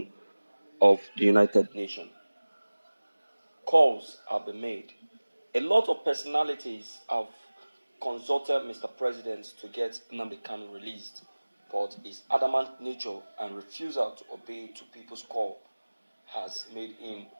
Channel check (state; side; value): inverted; both; correlation -1.00